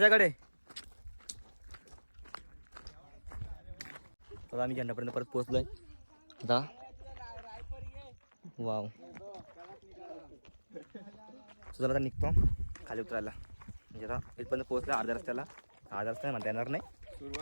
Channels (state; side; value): inverted; both; correlation -1.00